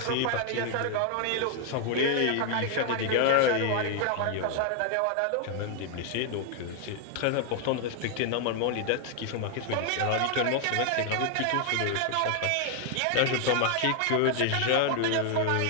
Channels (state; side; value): different; both; correlation 0.00